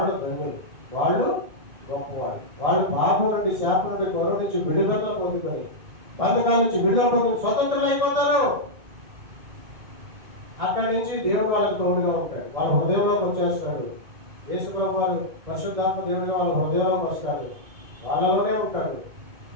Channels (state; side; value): late; left; 2.1 ms